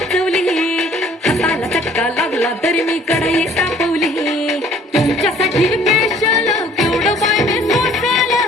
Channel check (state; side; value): normal; both; correlation 0.56